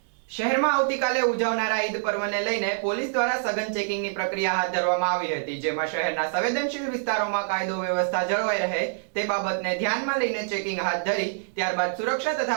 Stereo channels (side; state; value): left; silent; digital silence